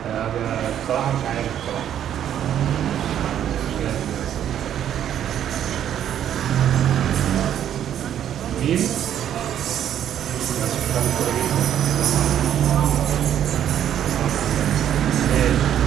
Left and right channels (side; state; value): left; quieter; 10.2 dB